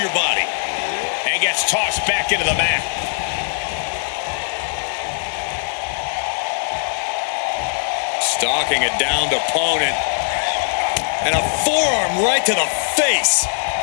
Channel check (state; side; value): silent; right; digital silence